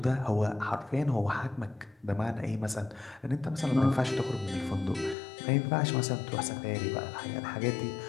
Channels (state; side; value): drops out; right; at 5.2 s